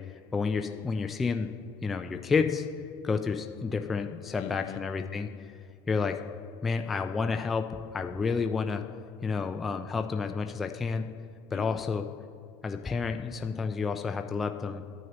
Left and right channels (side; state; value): right; quieter; 4.7 dB